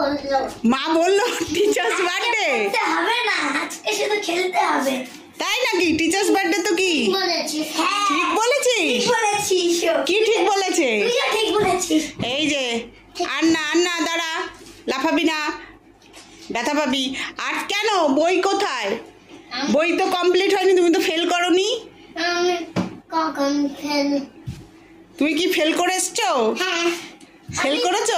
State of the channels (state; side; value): identical; both; correlation 1.00